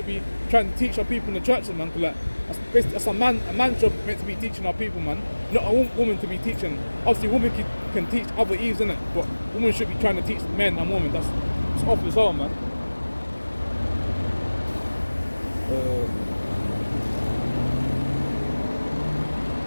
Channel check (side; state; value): both; inverted; correlation -1.00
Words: be trying to teach our people in the churches, man. Cause like, that's a man's job meant to be teaching our people, man. Not a woman to be teaching. Obviously, women can teach other Eves, innit? But women should be trying to teach men and women. That's off as well, man.